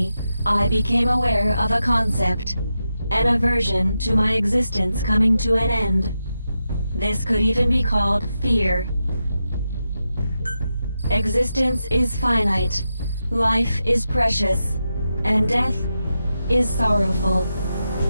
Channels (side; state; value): both; inverted; correlation -0.88